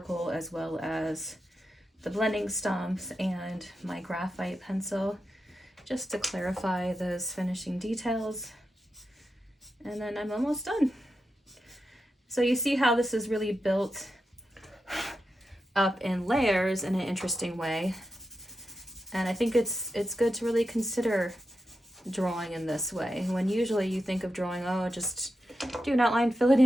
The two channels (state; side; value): normal; both; correlation 0.89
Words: as well as the blending stumps and my graphite pencil, just to clarify those finishing details. And then I'm almost done. So you see how this is really built up in layers in an interesting way. And I think it's good to really consider drawing in this way, when usually you think of drawing, oh, just do an outline, fill it